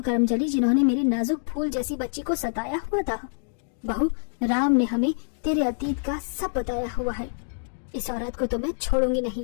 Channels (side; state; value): right; silent; digital silence